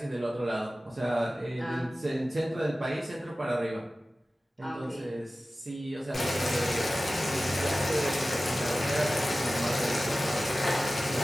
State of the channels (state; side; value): normal; both; correlation 0.96